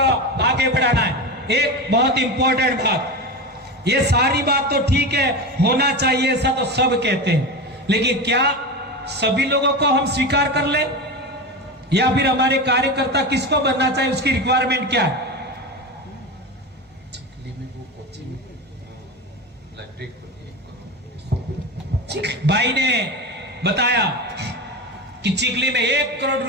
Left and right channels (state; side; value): normal; both; correlation 0.23